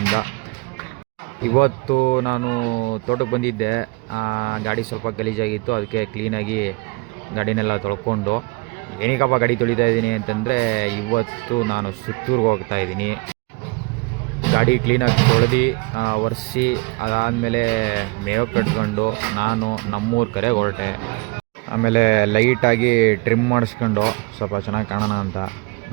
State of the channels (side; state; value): left; quieter; 28.8 dB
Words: ಇವತ್ತು ನಾನು ತೋಟಕ್ಕೆ ಬಂದಿದ್ದೆ. ಗಾಡಿ ಸ್ವಲ್ಪ ಗಲೀಜಾಗಿತ್ತು, ಅದಕ್ಕೆ ಕ್ಲೀನಾಗಿ ಗಾಡಿನೆಲ್ಲ ತೊಳ್ಕೊಂಡು ಏನಕ್ಕಪ್ಪ ಗಾಡಿ ತೊಳಿತಾ ಇದ್ದೀನಿ ಅಂತಂದರೆ, ಇವತ್ತು ನಾನು ಸುತ್ತೂರಿಗೆ ಹೋಗ್ತಾ ಇದ್ದೀನಿ. ಗಾಡಿ ಕ್ಲೀನಾಗಿ ತೊಳೆದು ಒರೆಸಿ ಅದಾದಮೇಲೆ ಮೇವು ಕಟ್ಕೊಂಡು ನಾನು ನಮ್ಮೂರ ಕಡೆ ಹೊರಟೆ. ಆಮೇಲೆ ಲೈಟಾಗಿ ಟ್ರಿಮ್ ಮಾಡಿಸ್ಕೊಂಡು ಸ್ವಲ್ಪ ಚೆನ್ನಾಗಿ ಕಾಣೋಣ ಅಂತ